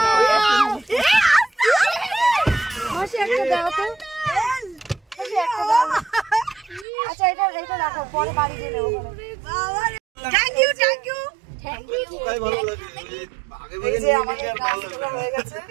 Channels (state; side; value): drops out; left; at 6.9 s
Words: আচ্ছা এটা রাখো, পরে বাড়ি দিয়ে নেবো। থ্যাংক ইউ এই যে আমাদের গাছগুলো হয়ে গেছে।